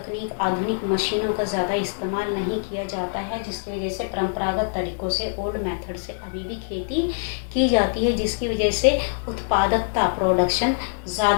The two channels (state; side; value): silent; right; digital silence